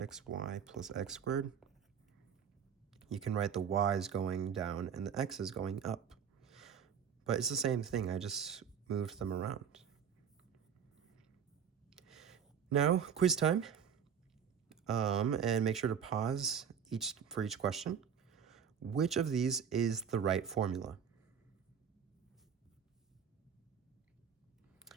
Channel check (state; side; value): quieter; left; 7.6 dB